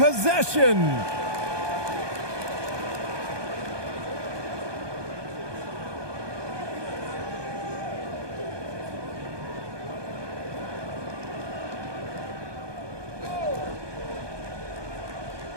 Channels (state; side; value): late; left; 1.2 ms